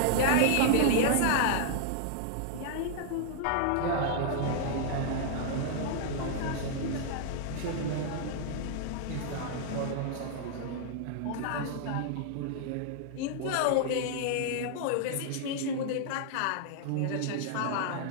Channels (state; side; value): different; both; correlation -0.01